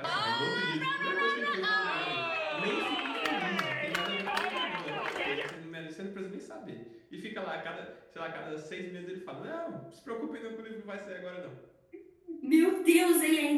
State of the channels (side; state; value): both; identical; correlation 1.00